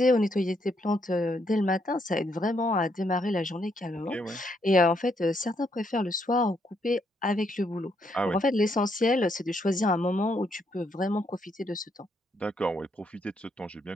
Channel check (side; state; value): both; normal; correlation 0.75